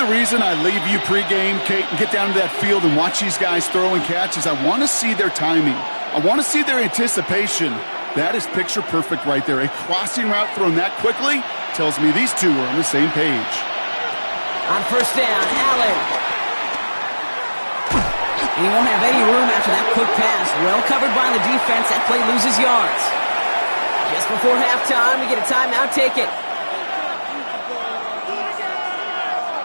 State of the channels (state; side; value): inverted; both; correlation -1.00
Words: the reason I leave you pregame, Kate, and get down to that field and watch these guys throw and catch is I want to see their timing. I want to see their anticipation. That is picture perfect right there. A crossing route thrown that quickly tells me these two are on the same page. On 1st down, Allen. He won't have any room after that quick pass. Well covered by the defense. That play loses yards. Just before halftime, we get a timeout taken.